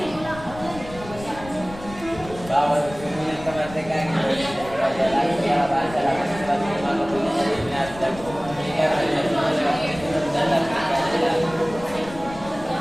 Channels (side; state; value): left; noise; rumble, 15 dB below the sound